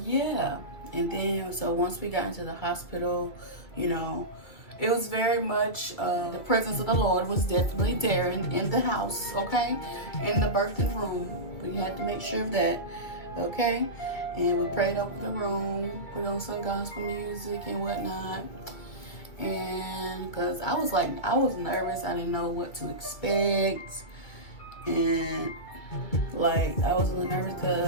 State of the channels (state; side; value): late; right; 2.4 ms